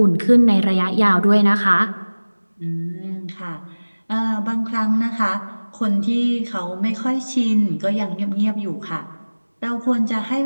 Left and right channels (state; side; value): inverted; both; correlation -1.00